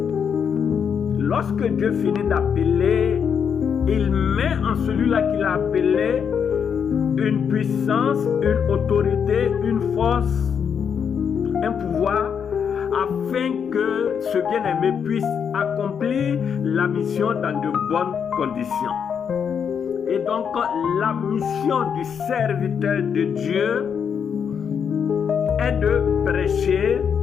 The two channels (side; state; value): right; quieter; 7.2 dB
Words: Lorsque Dieu finit d'appeler, il met en celui-là qu'il a appelé une puissance, une autorité, une force, un pouvoir, afin que ce bien-aimé puisse accomplir la mission dans de bonnes conditions. Et donc, la mission du serviteur de Dieu est de prêcher,